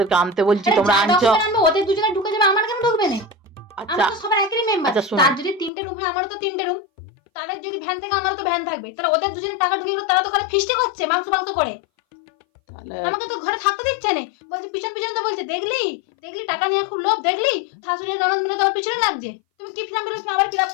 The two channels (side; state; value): right; drops out; at 5.7 s